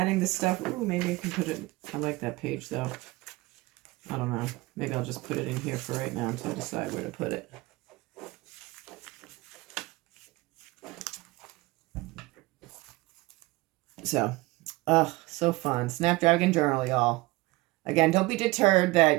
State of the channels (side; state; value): left; quieter; 21.5 dB